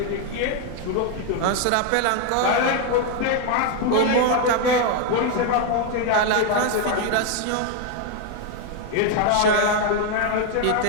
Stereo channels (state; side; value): different; both; correlation 0.01